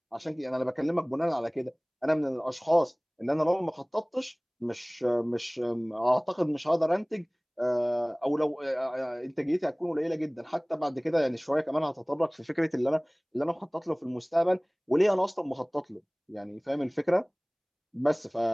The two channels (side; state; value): both; identical; correlation 1.00